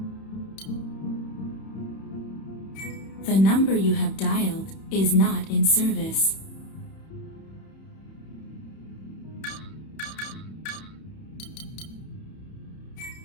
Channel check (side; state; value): right; late; 31 ms